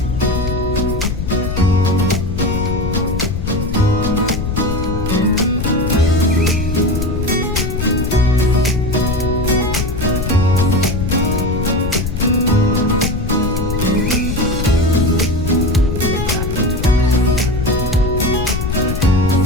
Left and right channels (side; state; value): left; noise; rumble, 3 dB below the sound